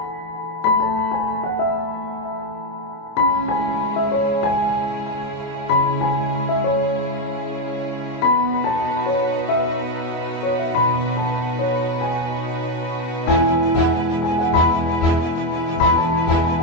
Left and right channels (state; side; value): late; right; 24 ms